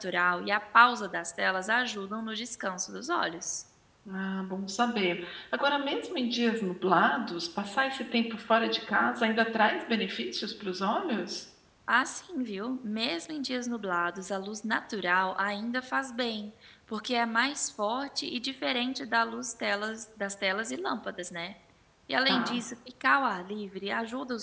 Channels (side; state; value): both; identical; correlation 1.00